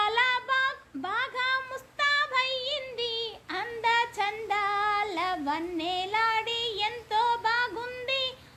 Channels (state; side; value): identical; both; correlation 1.00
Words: బాగా ముస్తాబయ్యింది, అంద చందాల వన్నెలాడి ఎంతో బాగుంది.